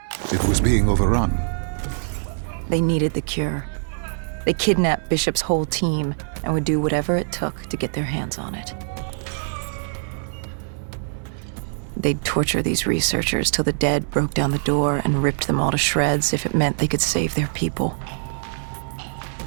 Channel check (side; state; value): left; silent; digital silence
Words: It was being overrun. They needed the cure. They kidnapped Bishop's whole team and would do whatever it took to get their hands on it. They'd torture these researchers till the dead broke down the door and ripped them all to shreds if it meant they could save their people.